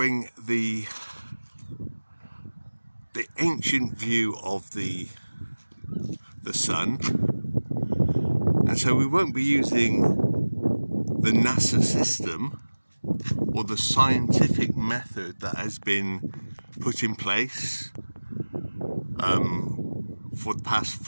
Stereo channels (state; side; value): inverted; both; correlation -1.00